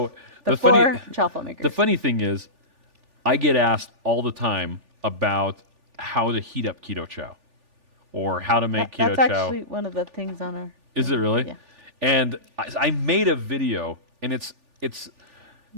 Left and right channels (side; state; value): left; late; 3.4 ms